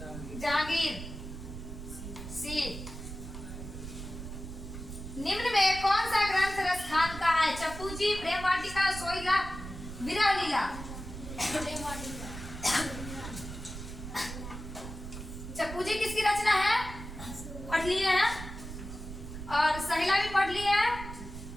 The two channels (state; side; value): noise; right; rumble, 10 dB below the sound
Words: जहांगीर। सी। निम्न में कौन सा ग्रंथ रसखान का है? चप्पू जी, प्रेम वाटिका, सोहिला, विरह लीला? चप्पू जी किसकी रचना है? पढ़ लिए हैं, और सहिला भी पढ़ लिए हैं,